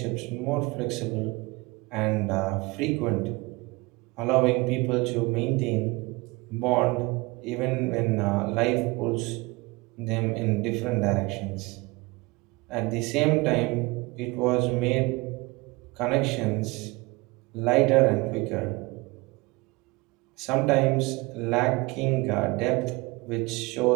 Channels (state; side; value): quieter; left; 24.2 dB